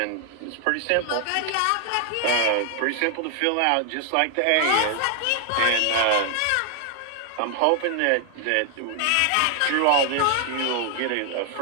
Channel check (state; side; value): different; both; correlation 0.00